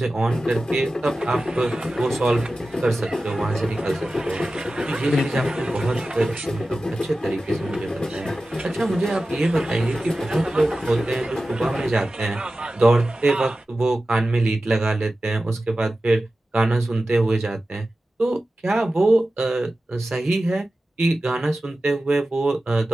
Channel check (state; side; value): normal; both; correlation 0.94